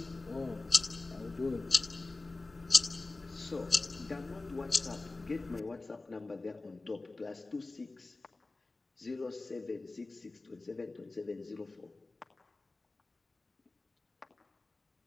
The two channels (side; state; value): right; quieter; 3.3 dB